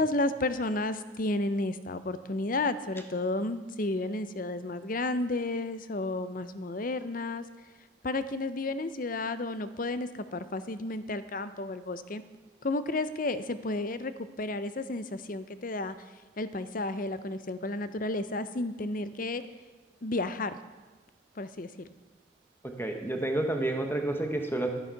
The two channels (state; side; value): normal; both; correlation 0.37